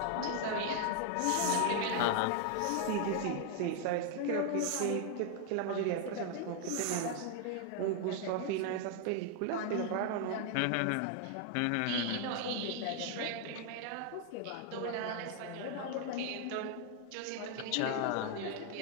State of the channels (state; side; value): different; both; correlation 0.00